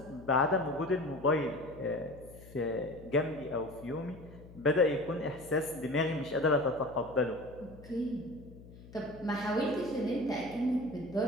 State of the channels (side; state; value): left; noise; hum, 18 dB below the sound